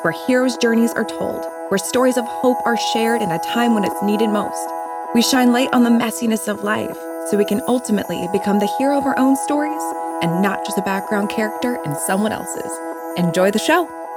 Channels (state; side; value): identical; both; correlation 1.00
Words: where heroes' journeys are told, where stories of hope are shared in a time when it's needed most. We shine light on the messiness of life so we can ultimately become the hero of our own stories and not just a background character in someone else's. Enjoy the show.